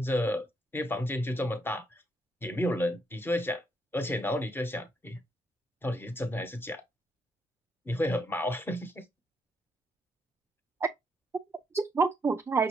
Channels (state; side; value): normal; both; correlation 0.76